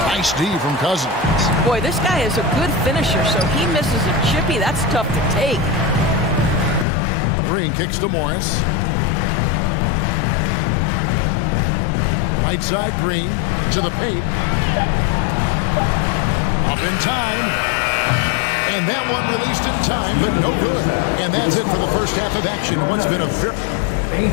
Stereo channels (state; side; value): drops out; right; at 6.9 s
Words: Nice D from Cousins. Boy, this guy is a good finisher, so he misses a chippy. That's tough to take. Green kicks to Morris. Right side, Green to the paint. Up in time. And that one released in time, but no good. And that's it for the first half of action. What's been a very...